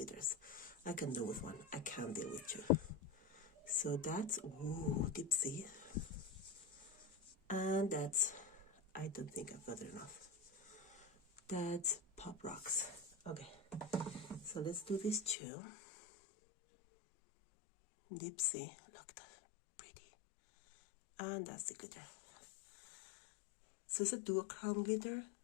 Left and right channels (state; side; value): drops out; right; at 15.4 s